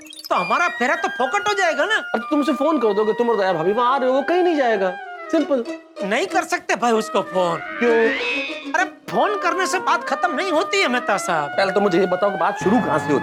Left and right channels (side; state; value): both; identical; correlation 1.00